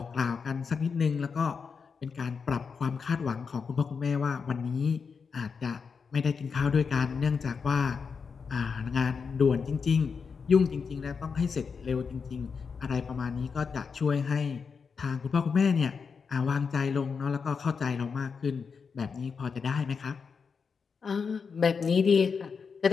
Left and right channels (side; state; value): right; quieter; 5.6 dB